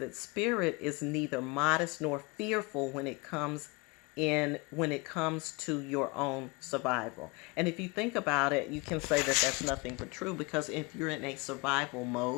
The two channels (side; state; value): right; quieter; 27.5 dB